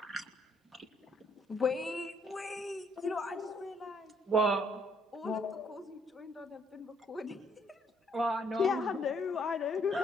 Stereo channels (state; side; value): normal; both; correlation 0.68